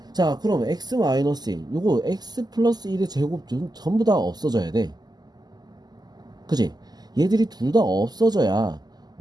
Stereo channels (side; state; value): left; late; 0.20 ms